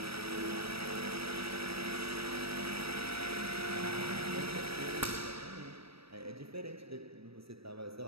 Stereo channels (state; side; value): late; left; 0.77 ms